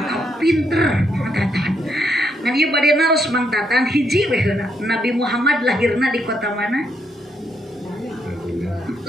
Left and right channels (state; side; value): normal; both; correlation 0.76